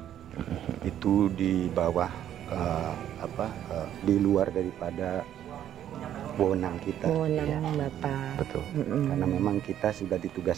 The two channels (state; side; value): quieter; left; 10.9 dB